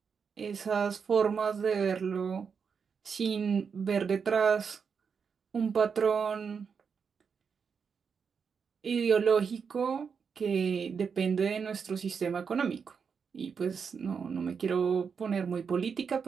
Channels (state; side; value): quieter; left; 6.2 dB